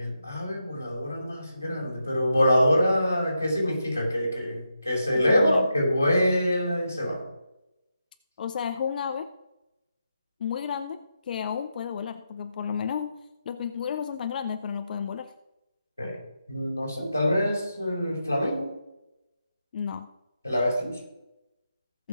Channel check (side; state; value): both; inverted; correlation -0.85